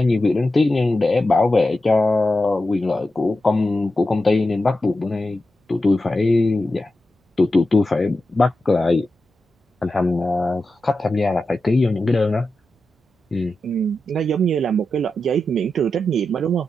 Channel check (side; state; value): both; normal; correlation 0.90